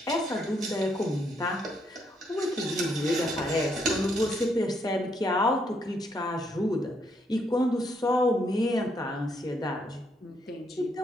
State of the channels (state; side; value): normal; both; correlation 0.74